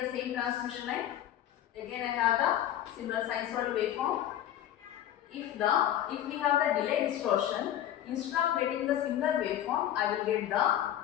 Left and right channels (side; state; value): right; quieter; 11.6 dB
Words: the same transmission line. Again, I have the similar sinusoidal waveform. If we have the delay distortion, instead of getting the similar waveform, I will get the